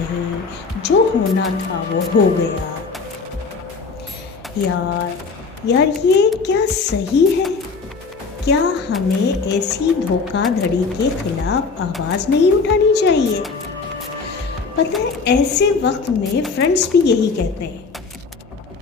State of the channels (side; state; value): right; quieter; 4.6 dB